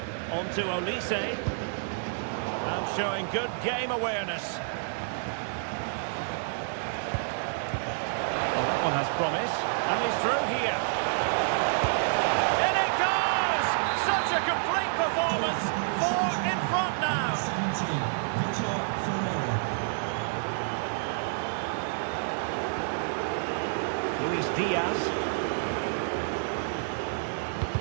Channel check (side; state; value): left; silent; digital silence